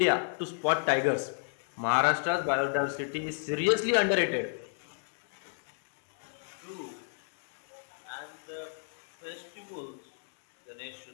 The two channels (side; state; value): right; silent; 57 dB below the other